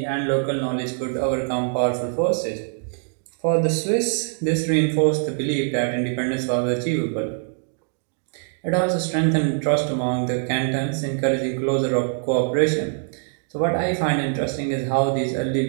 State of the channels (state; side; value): silent; left; digital silence